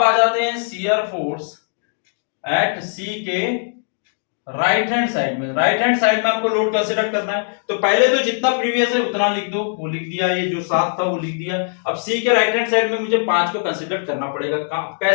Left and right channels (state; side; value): silent; right; digital silence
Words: आ जाते हैं शियर फोर्स एट सी के राइट हैंड साइड में। राइट हैंड साइड में आपको लोड कंसीडर करना है, तो पहले तो जितना प्रीवियस है उतना लिख दो, वो लिख दिया, ये जो 7 था वो लिख दिया। अब सी के राइट हैंड साइड में मुझे 5 को कंसीडर करना पड़ेगा।